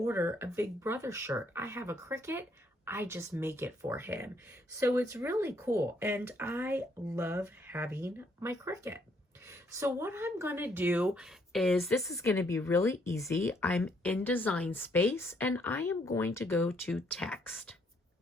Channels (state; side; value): normal; both; correlation 0.70